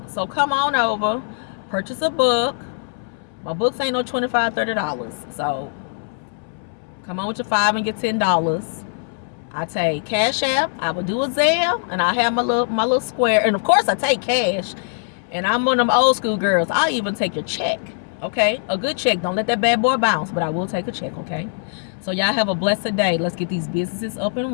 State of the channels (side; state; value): right; silent; 65 dB below the other